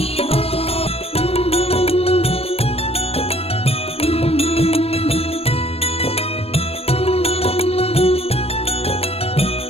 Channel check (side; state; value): right; late; 0.28 ms